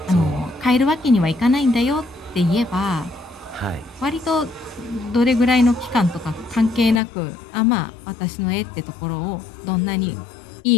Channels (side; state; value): right; drops out; at 7.0 s